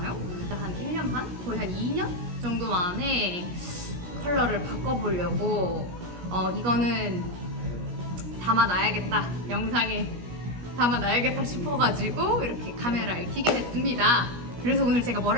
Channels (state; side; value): late; left; 17 ms